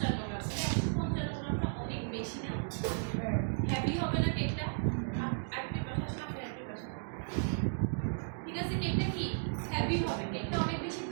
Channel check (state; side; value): silent; left; digital silence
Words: গ্রাম। 155 গ্রামটা অনেক বেশি না? হ্যাভি হবে না কেকটা? আরেকটা পাশে সাথে আরেকটা পাশে, ঠিক আছে? কেকটা কি হ্যাভি হবে, কেকটা অনেক বেশি